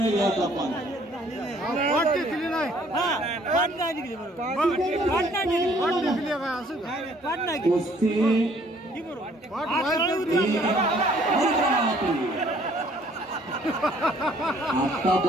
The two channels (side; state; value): both; normal; correlation 0.60